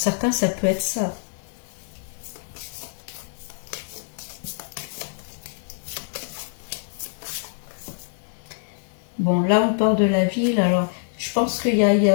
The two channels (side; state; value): right; silent; digital silence